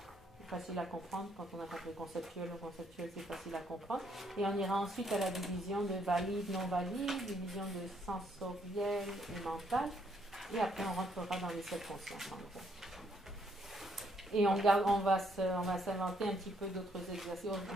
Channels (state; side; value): normal; both; correlation 0.71